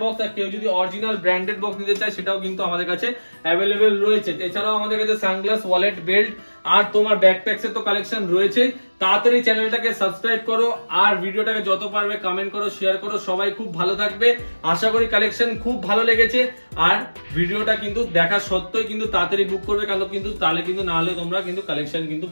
বক্স। আর কেউ যদি অরিজিনাল ব্র্যান্ডেড বক্স নিতে চায় সেটাও কিন্তু আমাদের কাছে অ্যাভেলেবেল রয়েছে। এছাড়াও আমাদের কাছে সানগ্লাস, ওয়ালেট, বেল্ট আর তোমার ব্যাকপ্যাকস এর তো কালেকশন রয়েছে। তাড়াতাড়ি চ্যানেলটাকে সাবস্ক্রাইব করো আর ভিডিওটাকে যত পারবে কমেন্ট করো, শেয়ার করো। সবাই খুব ভালো থাকবে, আশা করি কালেকশন খুব ভালো লেগেছে। আর ভিডিওটা কিন্তু দেখা সত্ত্বেও কিন্তু তাড়াতাড়ি বুক করবে, কারণ কিন্তু তাহলে কিন্তু না হলে তোমরা কিন্তু কালেকশন কিন্তু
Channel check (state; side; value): inverted; both; correlation -1.00